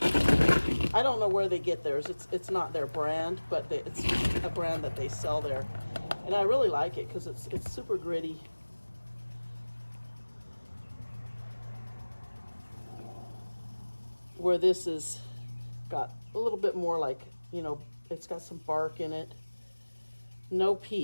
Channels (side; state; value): both; inverted; correlation -1.00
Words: don't know where they get theirs. It's not their brand, but it's a brand that they sell there. And I really like it because it's super gritty. Where this is got a little bit more like, you know, it's got some bark in it. No